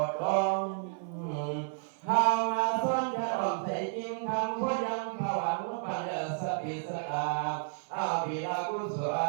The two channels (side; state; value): left; silent; 57 dB below the other